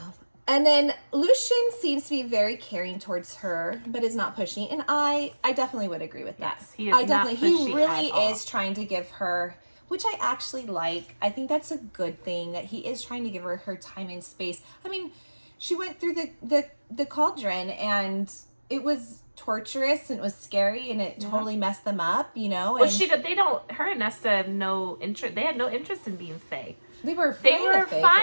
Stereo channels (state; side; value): inverted; both; correlation -1.00